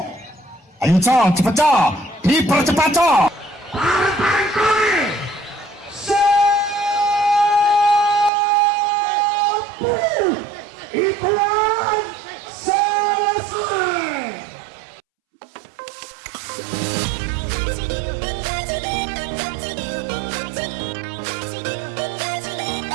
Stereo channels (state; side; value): drops out; left; at 8.3 s